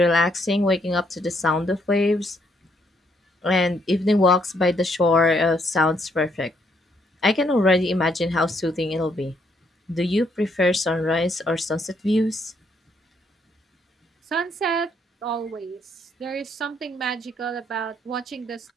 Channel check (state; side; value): normal; both; correlation 0.72